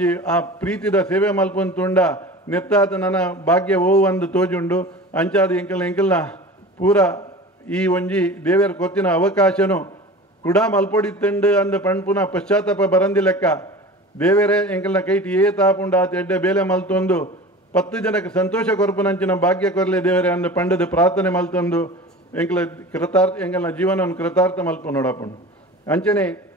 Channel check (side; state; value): both; normal; correlation 0.36